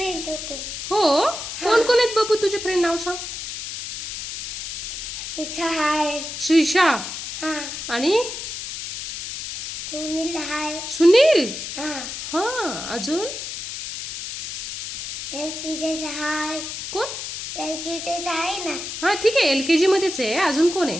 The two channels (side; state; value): left; noise; hiss, 7 dB below the sound